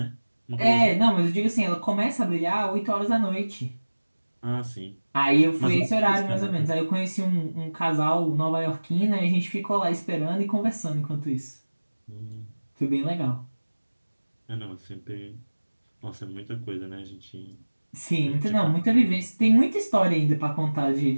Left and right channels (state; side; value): inverted; both; correlation -1.00